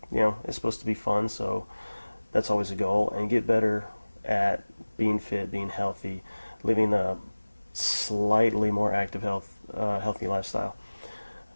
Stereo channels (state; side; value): inverted; both; correlation -1.00